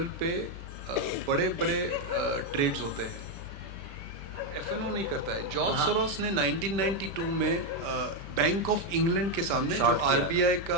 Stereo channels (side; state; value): left; late; 5.1 ms